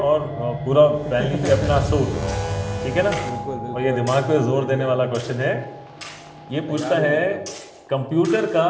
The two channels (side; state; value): both; identical; correlation 1.00